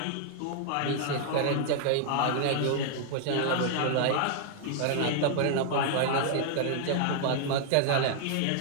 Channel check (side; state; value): both; different; correlation -0.01